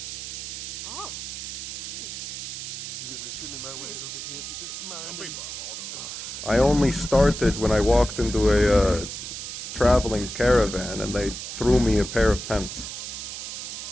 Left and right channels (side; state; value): right; noise; hiss, 7 dB below the sound